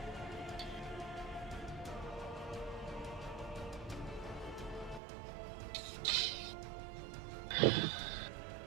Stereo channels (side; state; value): left; drops out; at 5.0 s